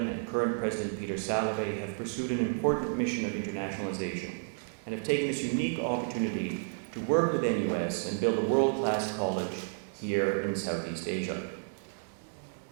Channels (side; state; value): left; silent; digital silence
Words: and current President Peter Salovey have pursued an important mission of internationalization and have taken this unique opportunity to work with NUS and build a world-class college here in Southeast Asia.